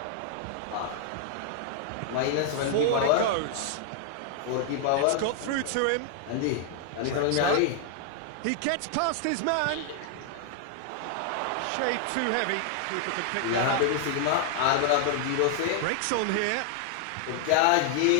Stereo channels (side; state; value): both; different; correlation 0.00